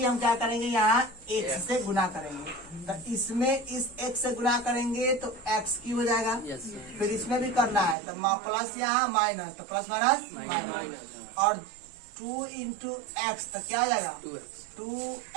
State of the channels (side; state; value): left; drops out; at 8.0 s